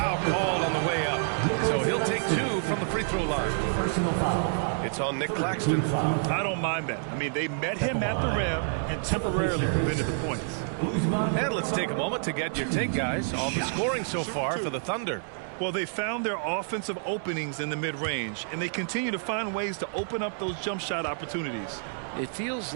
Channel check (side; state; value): left; silent; 59 dB below the other